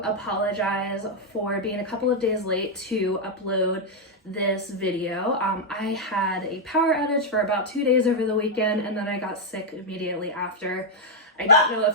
apologize for being a couple of days late to upload this video. I had a power outage for about 2 days over the weekend and then I got sick immediately after. I don't know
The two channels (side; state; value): both; normal; correlation -0.01